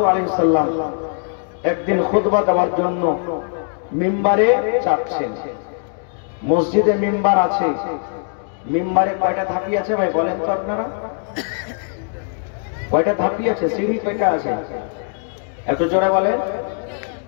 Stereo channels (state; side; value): silent; right; 60 dB below the other